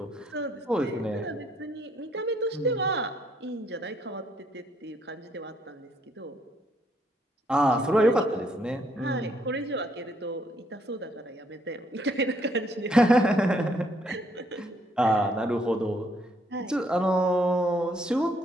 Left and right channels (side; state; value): both; normal; correlation 0.70